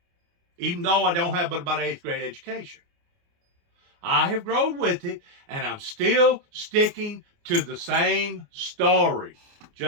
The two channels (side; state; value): left; late; 29 ms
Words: Even though I don't have but about 8th grade education. I have grown with it, and I'm still sticking to the same story.